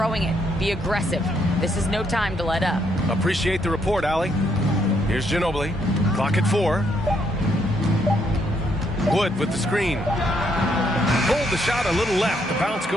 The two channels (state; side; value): normal; both; correlation 0.73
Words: it. Be aggressive. This is no time to let up." Appreciate the report, Allie. Here's Ginobili. Clock at 4. Wood with the screen. Pulled the shot a little left. The bounce